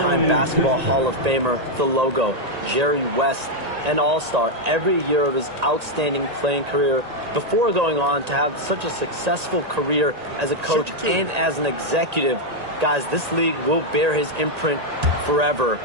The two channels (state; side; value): late; left; 1.9 ms